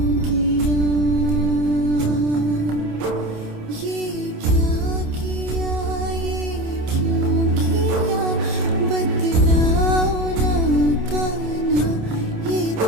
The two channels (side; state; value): left; late; 27 ms